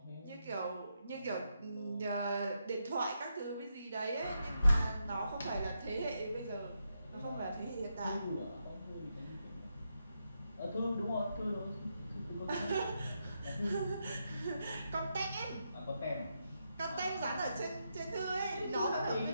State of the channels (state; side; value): inverted; both; correlation -0.83